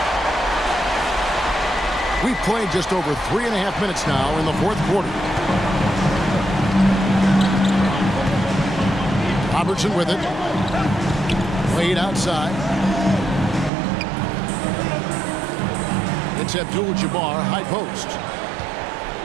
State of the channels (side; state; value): left; drops out; at 13.7 s